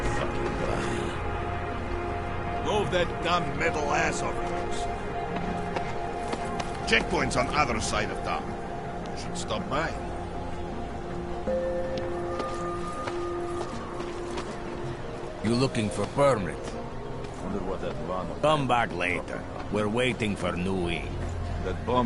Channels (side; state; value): both; identical; correlation 1.00